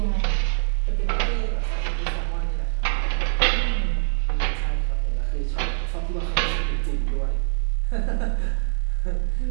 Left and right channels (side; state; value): left; silent; digital silence